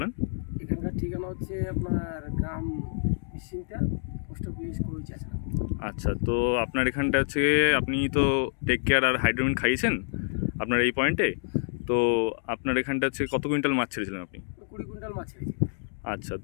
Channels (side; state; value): right; silent; digital silence